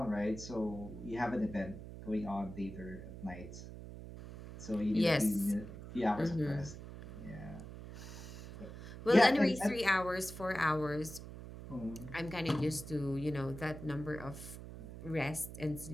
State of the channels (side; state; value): right; noise; hum, 12 dB below the sound